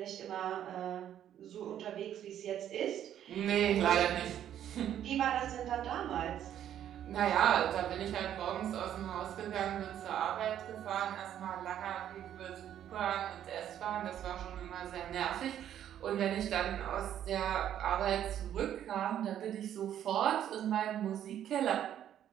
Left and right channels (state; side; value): quieter; left; 10.6 dB